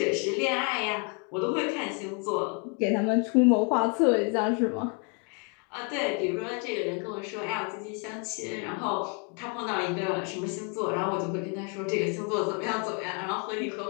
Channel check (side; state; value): right; quieter; 37.0 dB